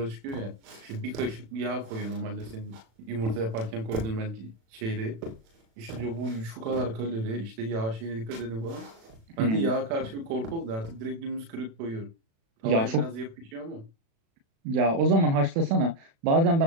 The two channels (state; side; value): late; left; 36 ms